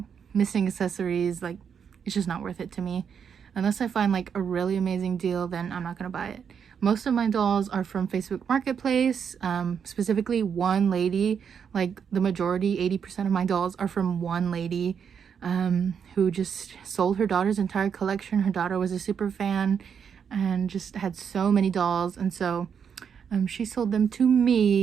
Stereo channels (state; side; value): quieter; left; 7.2 dB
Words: missing accessories, like it's just not worth it to me. Unless I find like a really amazing deal, then I'm not gonna buy it. Most of my dolls are from Facebook Marketplace, specifically one lady. Like the majority, 80% of my dolls are from one lady who just sold her daughter's entire collection. Her daughter was a super fan and just had so many dolls, and so she sold them to